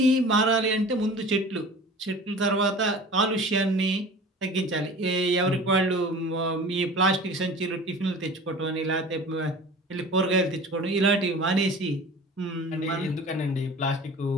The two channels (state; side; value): normal; both; correlation 0.40